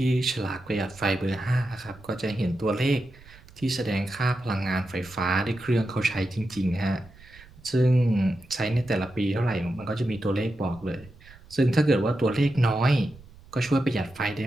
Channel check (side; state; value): right; noise; rumble, 23 dB below the sound